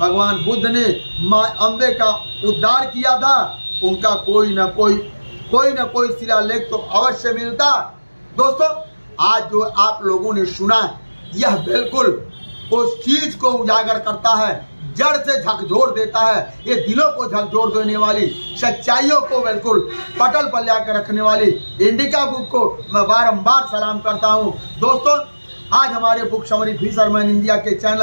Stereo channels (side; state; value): both; inverted; correlation -1.00